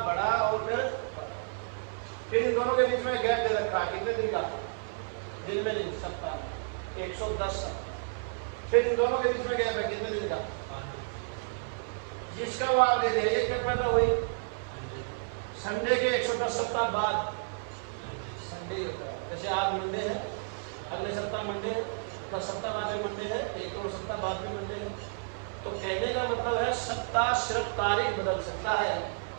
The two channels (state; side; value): silent; left; 55 dB below the other